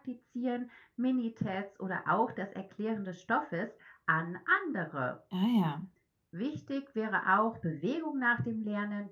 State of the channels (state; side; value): identical; both; correlation 1.00